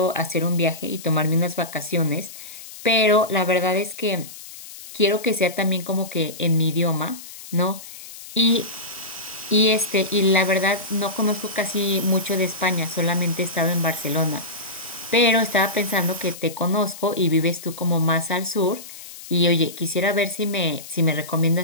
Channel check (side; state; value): left; noise; hiss, 15 dB below the sound